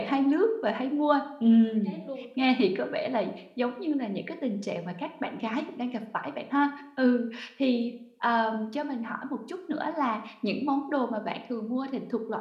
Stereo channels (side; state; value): both; identical; correlation 1.00